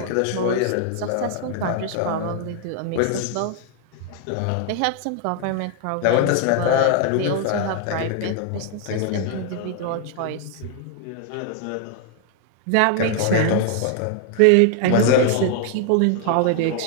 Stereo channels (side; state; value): both; different; correlation 0.00